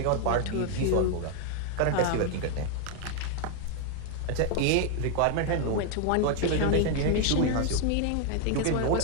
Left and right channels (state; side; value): different; both; correlation 0.00